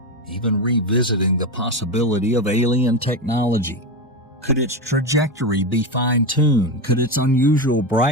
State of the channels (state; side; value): normal; both; correlation 0.15